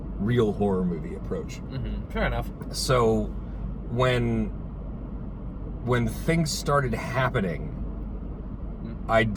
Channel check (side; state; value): both; identical; correlation 1.00